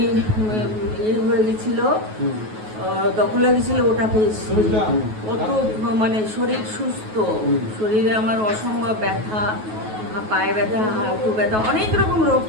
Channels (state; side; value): late; left; 9.3 ms